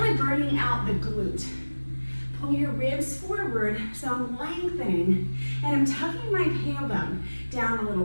burning out the glute. Pull your ribs forward, so I'm lengthening, and I'm tucking my tailbone down a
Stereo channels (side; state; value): both; inverted; correlation -1.00